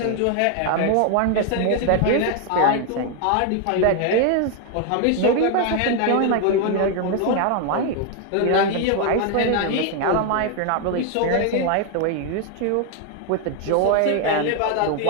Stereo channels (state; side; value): different; both; correlation 0.01